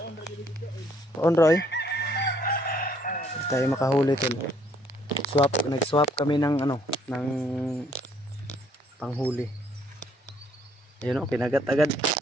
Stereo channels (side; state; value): both; normal; correlation 0.65